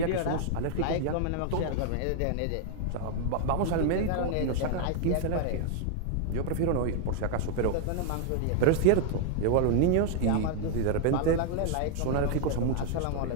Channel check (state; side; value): different; both; correlation 0.00